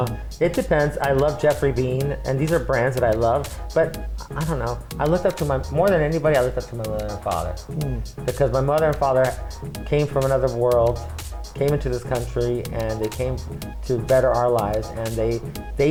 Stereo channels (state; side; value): identical; both; correlation 1.00